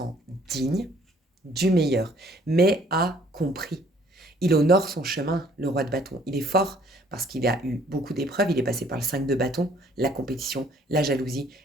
digne du meilleur, mais a compris. Il honore son chemin, le roi de bâton. Il est fort parce qu'il a eu beaucoup d'épreuves. Il est passé par le 5 de bâton, la compétition, la jalousie,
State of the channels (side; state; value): both; normal; correlation 0.59